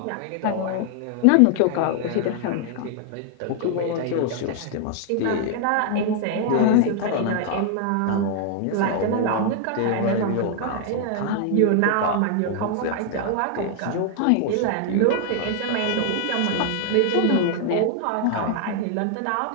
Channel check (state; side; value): different; both; correlation 0.00